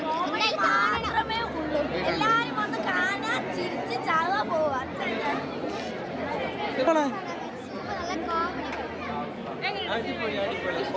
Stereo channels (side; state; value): both; identical; correlation 1.00